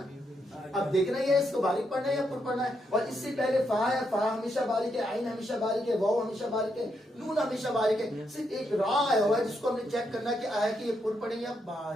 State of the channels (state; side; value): normal; both; correlation 0.80